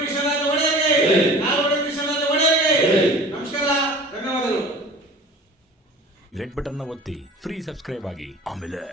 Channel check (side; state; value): both; normal; correlation 0.42